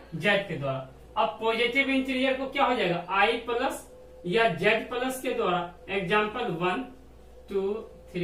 जेड के द्वारा। अब पॉजिटिव इंटीरियर को क्या हो जाएगा, आई प्लस या जेड प्लस के द्वारा। एग्जाम्पल 1 2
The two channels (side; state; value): both; identical; correlation 1.00